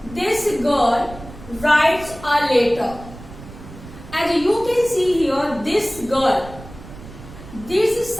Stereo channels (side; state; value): right; noise; rumble, 16 dB below the sound